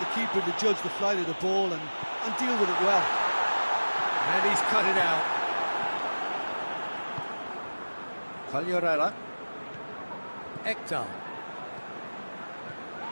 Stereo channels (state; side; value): inverted; both; correlation -1.00